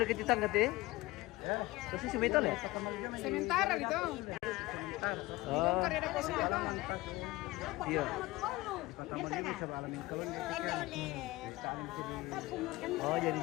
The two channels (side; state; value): right; quieter; 19.9 dB